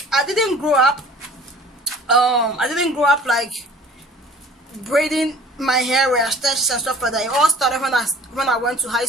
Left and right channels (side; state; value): both; normal; correlation 0.49